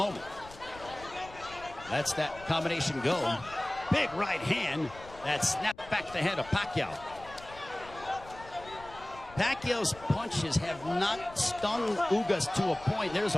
That's that combination go. Big right hand that snapped back the head of Pacquiao. Pacquiao's punches have not stung Ugas to a point. There's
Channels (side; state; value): left; noise; rumble, 19 dB below the sound